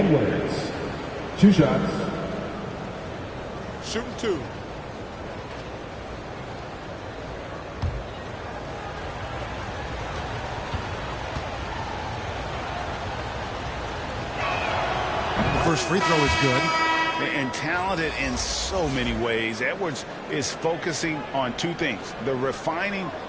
2 shots. Shooting 2. The first free throw is good. And talented in so many ways. Edwards is focusing on 2 things: the refining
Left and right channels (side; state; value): both; identical; correlation 1.00